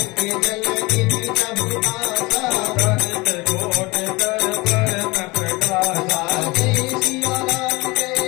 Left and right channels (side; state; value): right; quieter; 23.8 dB